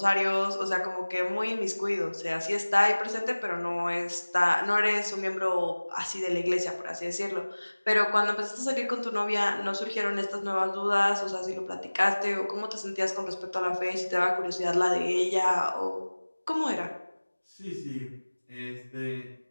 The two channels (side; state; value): both; inverted; correlation -1.00